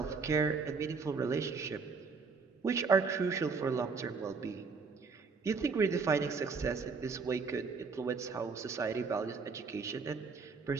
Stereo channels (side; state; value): left; quieter; 4.9 dB